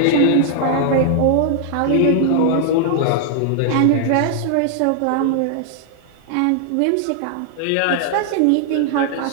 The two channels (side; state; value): both; different; correlation -0.01